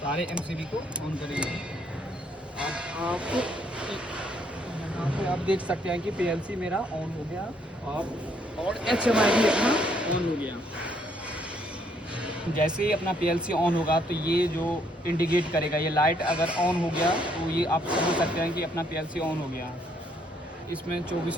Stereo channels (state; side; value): normal; both; correlation 0.69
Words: एमसीबी को ऑन करेंगे। आप यहाँ पे आप देख सकते हैं कि पीएलसी मेरा ऑन हो गया और एचएमआई भी अपना ऑन हो गया। जैसे ही अपना पीएलसी ऑन होगा तो ये जो इंडिकेट करेगा, ये लाइट अगर ऑन हो गया तो ये आप समझ सकते हैं कि अपना पीएलसी ऑन हो गया। इसमें